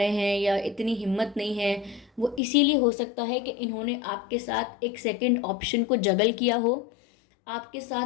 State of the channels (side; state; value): right; drops out; at 2.4 s